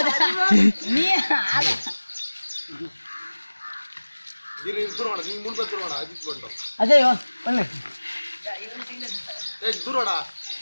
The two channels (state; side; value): inverted; both; correlation -1.00